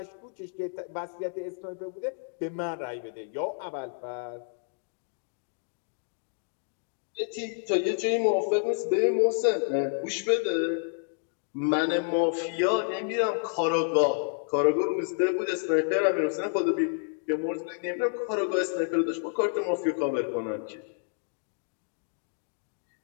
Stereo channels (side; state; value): right; silent; 58 dB below the other